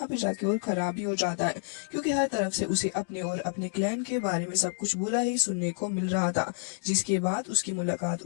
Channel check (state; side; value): silent; right; digital silence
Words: पे जाके और खराब ही हो जाता है, क्योंकि हर तरफ से उसे अपने और अपने क्लैन के बारे में सब कुछ बुरा ही सुनने को मिल रहा था। जिसके बाद उसकी मुलाकात